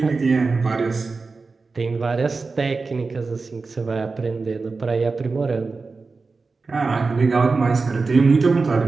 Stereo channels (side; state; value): left; quieter; 4.1 dB